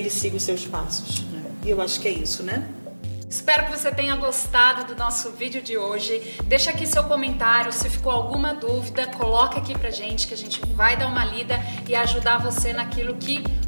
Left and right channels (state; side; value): inverted; both; correlation -1.00